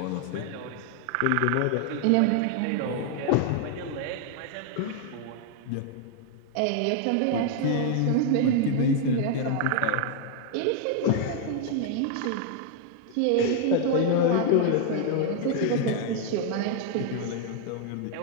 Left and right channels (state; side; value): different; both; correlation 0.00